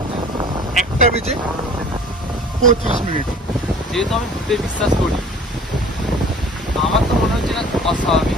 1:35। যেহেতু আমি ভূতে বিশ্বাস করি, আমার তো মনে হচ্ছে না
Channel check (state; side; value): normal; both; correlation 0.46